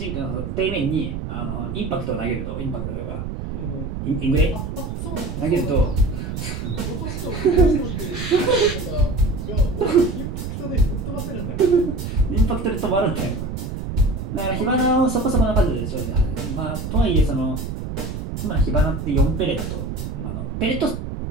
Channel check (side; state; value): right; noise; rumble, 6 dB below the sound